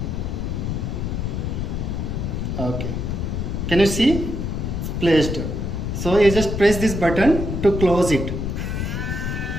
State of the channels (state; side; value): noise; left; rumble, 2 dB below the sound